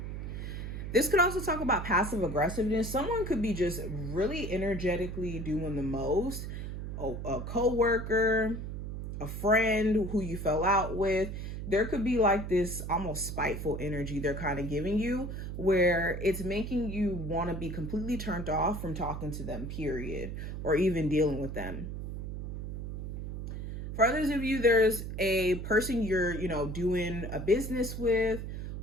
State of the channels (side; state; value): right; noise; hum, 6 dB below the sound